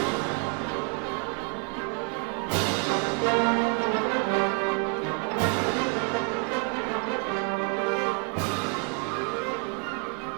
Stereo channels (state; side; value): quieter; left; 34.3 dB